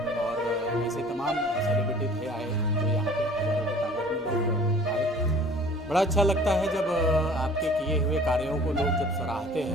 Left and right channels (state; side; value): normal; both; correlation 0.49